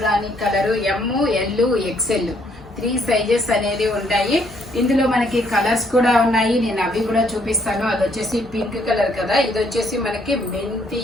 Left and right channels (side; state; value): both; normal; correlation 0.68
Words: colour M, L, XL 3 sizes అనేది ఉంటాయి. ఇందులో మనకి కలర్స్ కూడా ఉన్నాయి. నేను అవి కూడా చూపిస్తాను. అది వచ్చేసి పింక్ కలర్ కదా, ఇది వచ్చేసి మనకి మెంతి